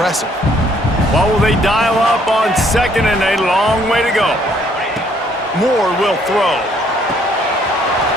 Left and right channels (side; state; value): both; normal; correlation 0.65